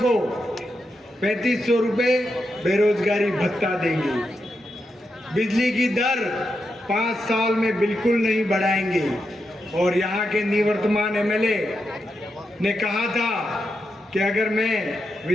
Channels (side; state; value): both; normal; correlation 0.86